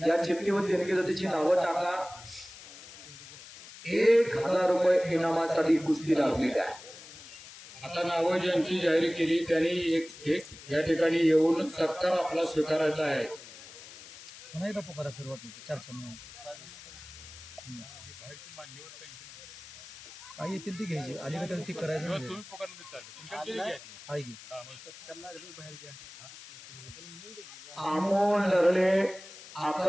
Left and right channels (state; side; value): noise; left; hiss, 16 dB below the sound